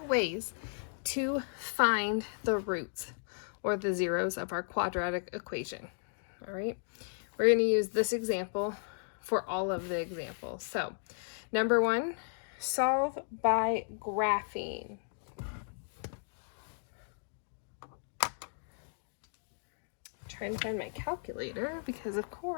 ways to find the roots or the zeros of our quadratic equation. All right. We're going to use this example for all of the examples. So, number 1, solve by graphing. Trying to find my calculator because, of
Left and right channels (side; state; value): right; silent; digital silence